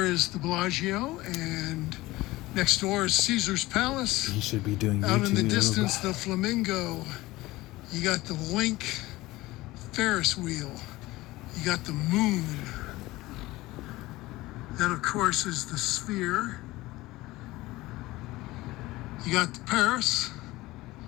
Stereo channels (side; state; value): right; quieter; 18.9 dB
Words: is the Bellagio, and next door is Caesar's Palace. He should be doing Out YouTube. in the distance, the Flamingo. You got the Link Ferris wheel. You got the moon. That, of course, is the Sphere. You got the Paris,